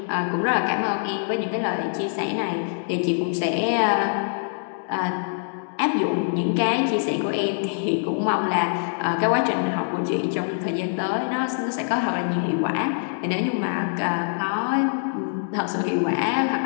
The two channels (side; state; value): right; silent; digital silence